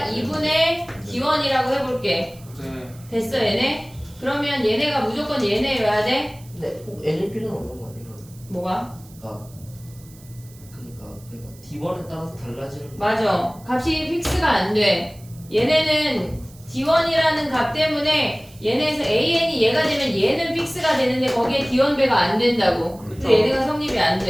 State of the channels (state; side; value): noise; right; hiss, 24 dB below the sound